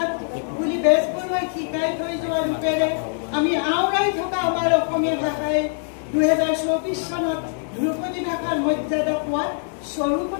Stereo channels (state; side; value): silent; right; digital silence